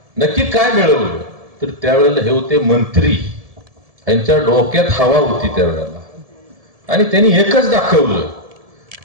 नक्की काय मिळवलं. तर त्यावेळेला हे होते मंत्री, यांच्या डोक्यात हवा होती त्यावेळेला, आणि त्यांनी एकच दाखवलं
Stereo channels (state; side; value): late; left; 1.7 ms